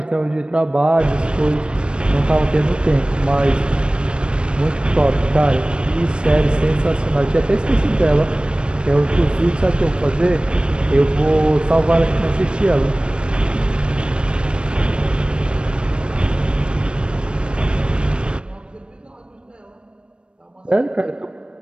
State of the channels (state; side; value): late; left; 0.055 ms